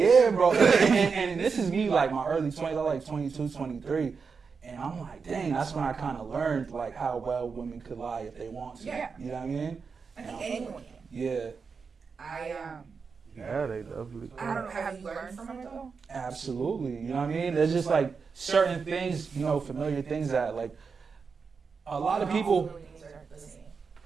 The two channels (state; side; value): quieter; left; 5.3 dB